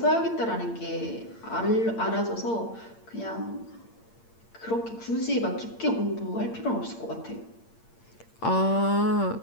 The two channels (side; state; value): right; late; 8.7 ms